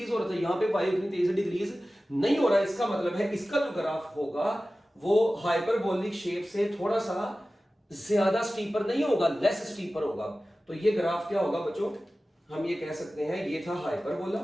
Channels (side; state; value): both; normal; correlation 0.96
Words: हो रहा था, यहां पे y उतनी तेजी से डिक्रीज नहीं हो रहा है। इसका मतलब है इसका जो ग्राफ होगा वो हाइपरबोलिक शेप से थोड़ा सा ज्यादा स्टीपर नहीं होगा, लेस स्टीपर होगा। तो ये ग्राफ क्या होगा बच्चों? हम ये कह सकते हैं ये था हाइपरबोला